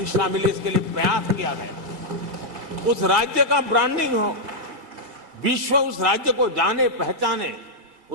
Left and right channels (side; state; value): left; late; 2.3 ms